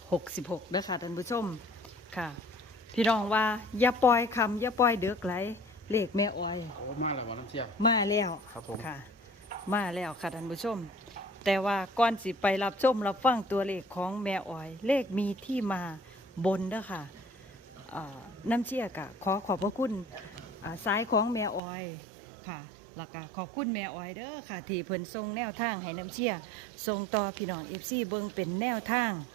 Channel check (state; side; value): drops out; left; at 21.6 s